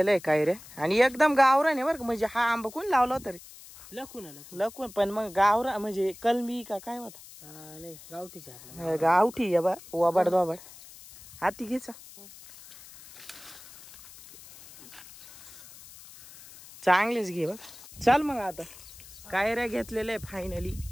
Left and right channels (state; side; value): noise; left; hiss, 19 dB below the sound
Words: आहे काय रे. आणि एकदम गावरान आहे बरं का. म्हणजे हा आंबा कोण लावला होता रे? लकून. पण मग गावरा म्हणजे कलमी का काय होता? गावठी या बा वाबाड दोबाड. हाती घ्यायचा. चांगलेच घे बघ. चल मग आता कैऱ्या घेतलेल्या आहे फायनली.